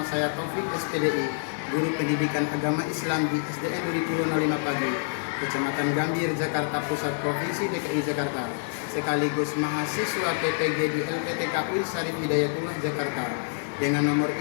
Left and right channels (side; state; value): right; silent; digital silence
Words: saya Taufik SPDI, Guru Pendidikan Agama Islam di SDN Duri 05 Pagi, Kecamatan Gambir, Jakarta Pusat, Provinsi DKI Jakarta, sekaligus mahasiswa PPG di LPTK UI Syarif Hidayatullah Jakarta, dengan nomor